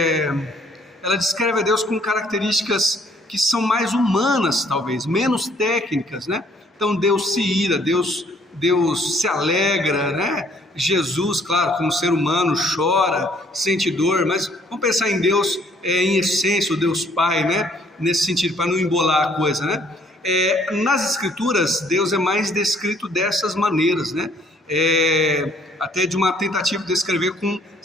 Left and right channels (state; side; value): normal; both; correlation 0.63